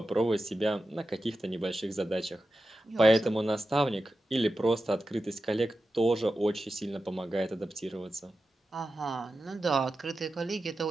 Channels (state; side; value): normal; both; correlation 0.92